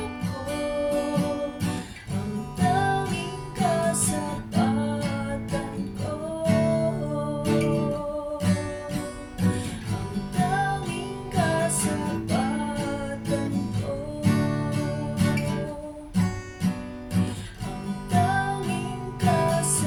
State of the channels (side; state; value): both; identical; correlation 1.00